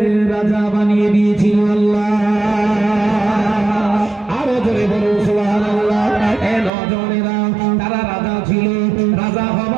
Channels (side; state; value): left; drops out; at 6.7 s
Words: রাজা বানিয়ে দিয়েছিল আল্লাহ। আরো জোরে বলো সুবহানাল্লাহ। এ নজনেরা, তারা রাজা ছিল। রাজা